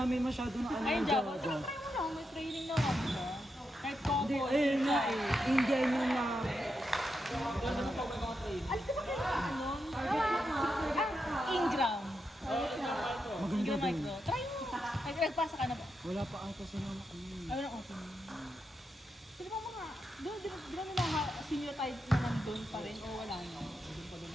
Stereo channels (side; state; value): both; normal; correlation 0.85